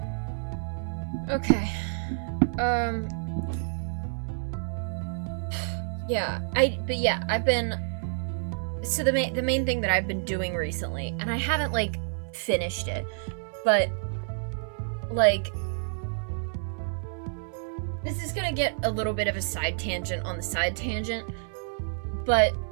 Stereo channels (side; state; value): left; silent; digital silence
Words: Okay. Yeah, I've been, so the main thing that I've been doing recently, and I haven't, like, finished it, but, like, this is gonna get a little bit of a side tangent on the side tangent, but,